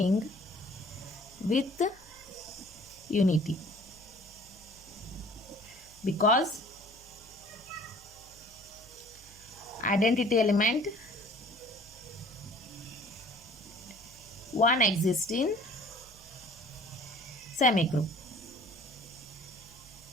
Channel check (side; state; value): right; noise; hum, 23 dB below the sound